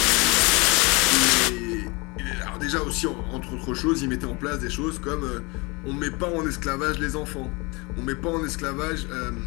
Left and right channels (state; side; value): quieter; right; 27.5 dB